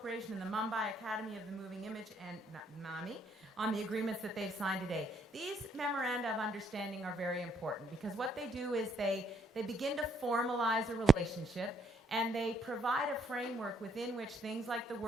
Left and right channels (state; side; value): normal; both; correlation 0.69